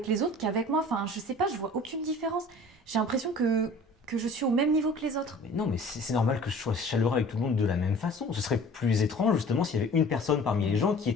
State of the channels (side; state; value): both; normal; correlation 0.46